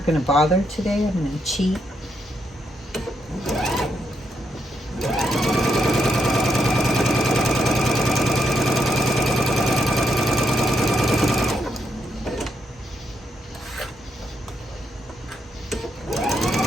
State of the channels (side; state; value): both; normal; correlation 0.79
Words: going to bother today. I'm going to cheat.